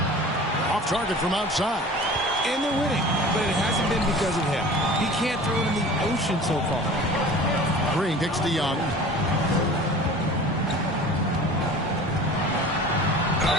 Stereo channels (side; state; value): both; normal; correlation 0.41